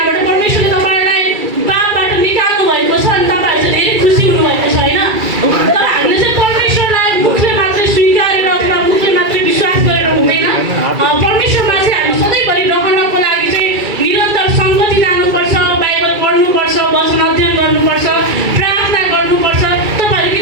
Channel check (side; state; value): left; late; 2.3 ms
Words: परमेश्वरले तपाईँलाई पापबाट निकाल्नु भएको छ अनि तपाईँहरू चाहिँ धेरै खुसी हुनुभएको छ होइन? तर हामीले चाहिँ परमेश्वरलाई मुखले मात्रै स्वीकारेर अथवा मुखले मात्रै विश्वास गरेर हुँदैन। परमेश्वरमा चाहिँ हामी सधैँभरि रहनको लागि चाहिँ निरन्तर सङ्गति लानुपर्छ, बाइबल पढ्नुपर्छ, वचन अध्ययन गर्नुपर्छ, प्रार्थना गर्नुपर्छ। तपाईँहरू के